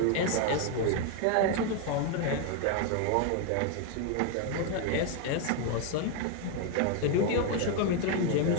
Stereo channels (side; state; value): both; different; correlation 0.00